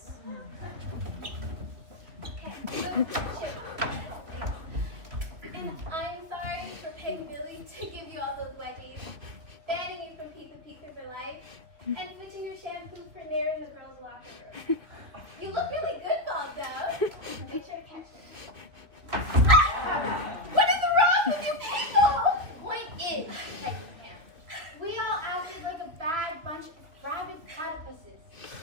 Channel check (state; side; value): late; left; 3.1 ms